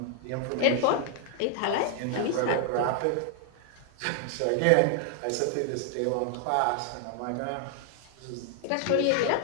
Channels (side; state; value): both; different; correlation 0.00